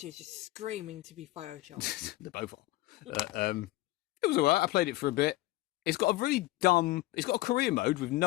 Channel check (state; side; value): quieter; right; 18.1 dB